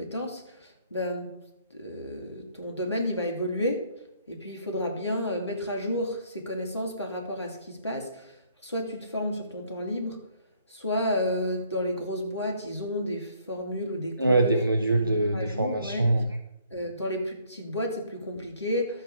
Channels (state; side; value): inverted; both; correlation -0.64